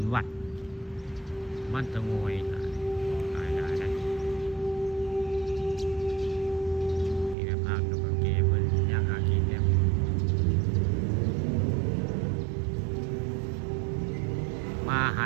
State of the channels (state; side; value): drops out; left; at 7.4 s